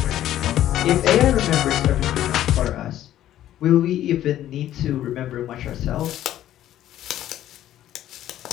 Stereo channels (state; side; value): quieter; right; 12.5 dB